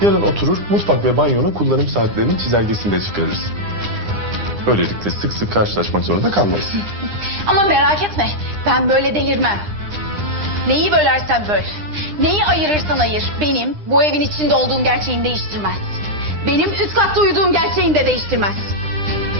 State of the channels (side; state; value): left; late; 9.8 ms